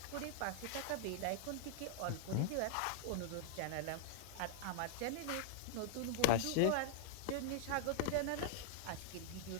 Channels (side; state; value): both; different; correlation -0.01